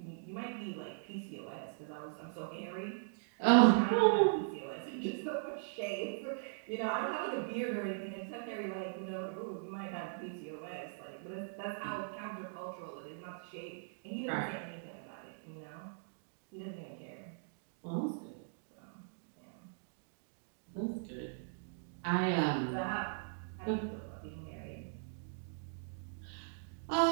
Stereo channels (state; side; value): silent; left; digital silence